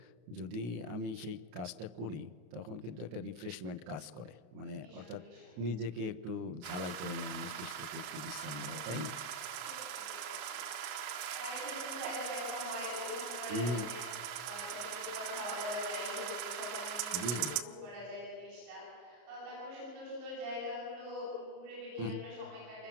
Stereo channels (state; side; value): late; left; 34 ms